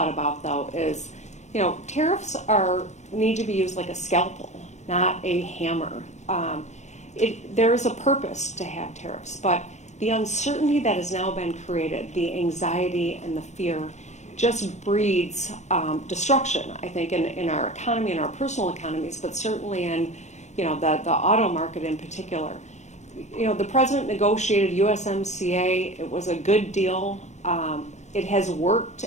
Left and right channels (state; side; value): late; right; 0.33 ms